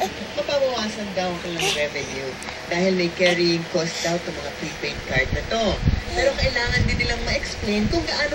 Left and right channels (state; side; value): identical; both; correlation 1.00